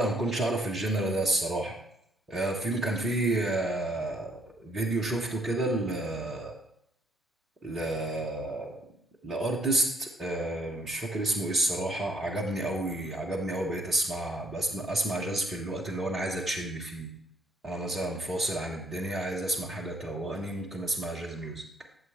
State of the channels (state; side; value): normal; both; correlation 0.67